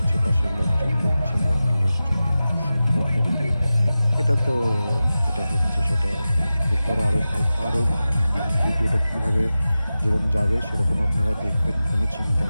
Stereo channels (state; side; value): inverted; both; correlation -0.94